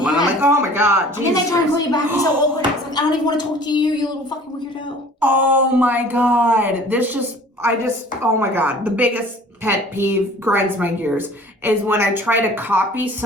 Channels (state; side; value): normal; both; correlation 0.48